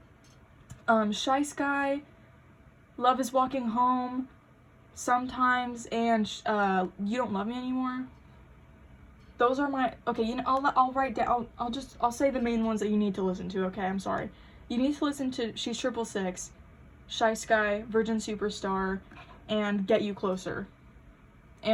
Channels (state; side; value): identical; both; correlation 1.00